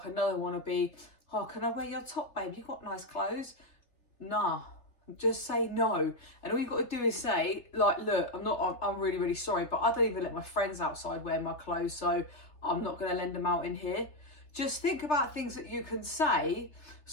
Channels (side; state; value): right; late; 3.3 ms